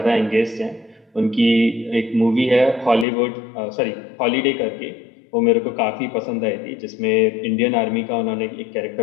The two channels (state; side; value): drops out; right; at 3.1 s